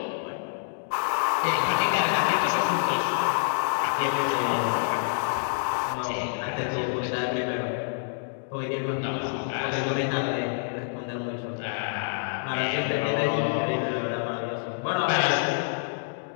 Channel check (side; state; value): right; silent; digital silence